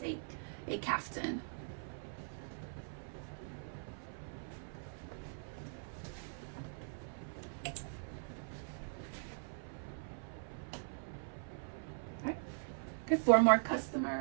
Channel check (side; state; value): left; silent; 50 dB below the other